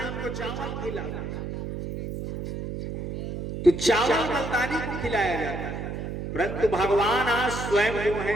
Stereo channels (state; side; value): noise; right; hum, 6 dB below the sound